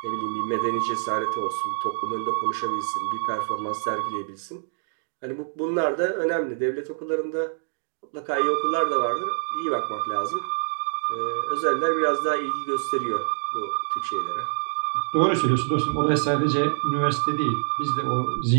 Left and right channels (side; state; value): left; silent; digital silence